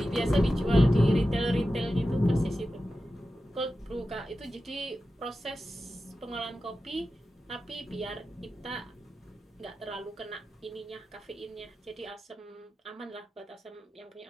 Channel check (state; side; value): normal; both; correlation 0.93